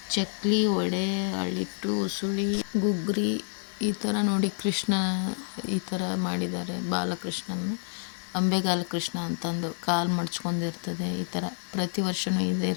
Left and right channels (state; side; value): silent; right; digital silence